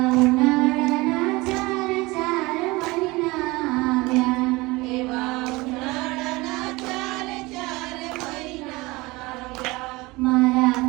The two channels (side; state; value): left; quieter; 22.5 dB